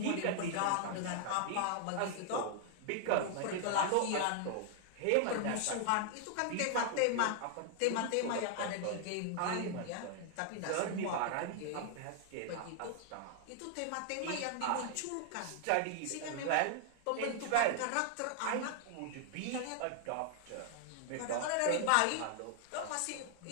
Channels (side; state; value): both; different; correlation 0.00